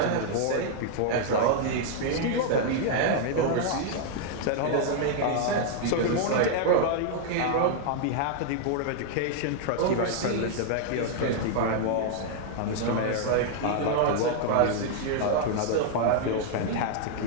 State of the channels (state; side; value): different; both; correlation -0.01